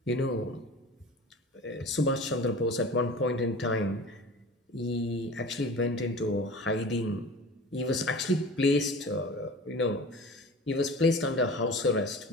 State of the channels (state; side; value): normal; both; correlation 0.38